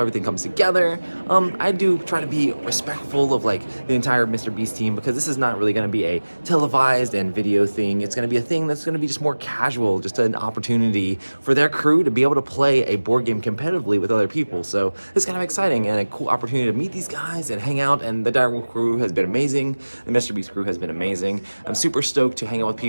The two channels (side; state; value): both; inverted; correlation -1.00